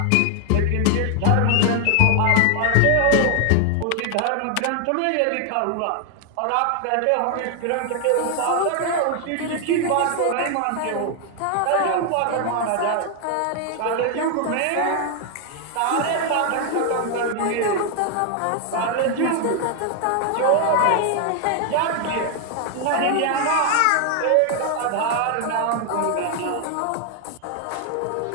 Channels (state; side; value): different; both; correlation 0.00